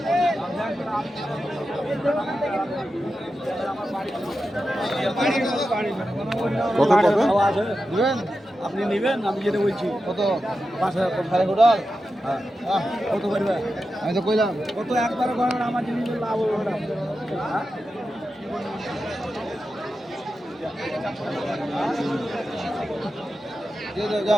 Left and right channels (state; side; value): normal; both; correlation 0.91